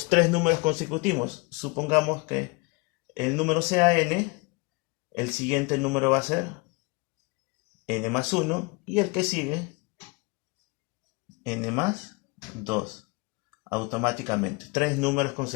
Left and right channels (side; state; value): right; quieter; 27.0 dB